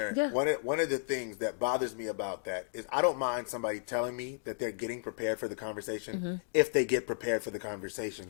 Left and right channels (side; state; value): right; silent; digital silence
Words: Yeah. One of the things that bothers me about that is I don't mind somebody telling me that they're getting prepared for the conversation if they get prepared for the